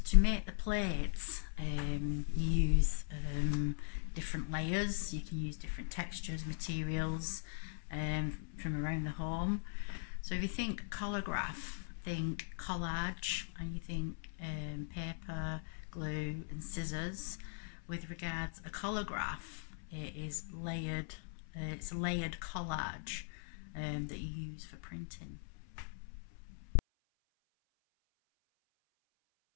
to make the plates, you use different layers. You can use different textures, materials from around the home. So if you think collagraph, think collage, and you think paper, glue and scissors. With regards a collagraph, it is layered. It's a layered collage that you use for printing.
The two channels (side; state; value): right; silent; 51 dB below the other